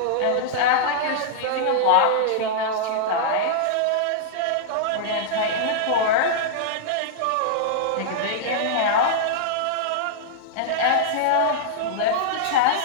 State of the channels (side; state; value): both; different; correlation -0.02